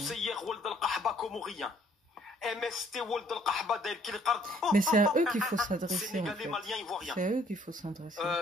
Wald al-Qahba comorien. MST Wald al-Qahba d'El Kilqard. Mais c'est à eux qu'il faut s'adresser, en Sénégalais, fait. Maliens, Ivoiriens. C'est à eux qu'il faut s'adresser.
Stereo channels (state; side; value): normal; both; correlation 0.63